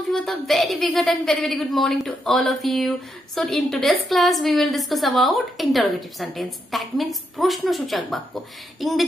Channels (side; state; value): both; normal; correlation 0.81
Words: you with a very big and very good morning to all of you. So in today's class we will discuss about interrogative sentence. That means প্রশ্নসূচক বাক্য।